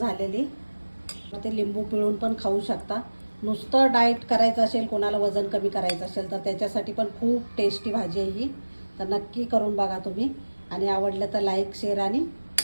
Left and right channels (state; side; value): inverted; both; correlation -1.00